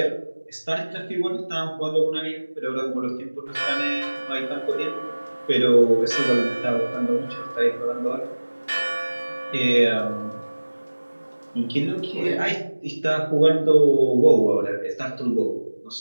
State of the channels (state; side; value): inverted; both; correlation -1.00